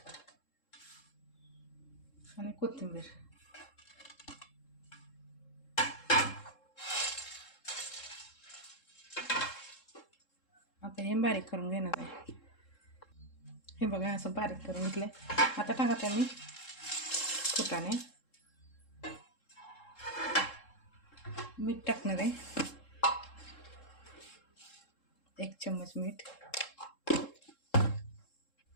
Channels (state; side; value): late; right; 3.7 ms